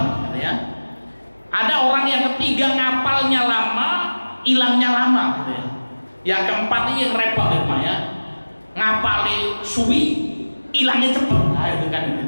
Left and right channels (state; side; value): inverted; both; correlation -1.00